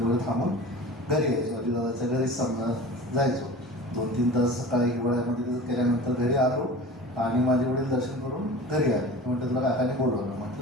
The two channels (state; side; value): normal; both; correlation 0.37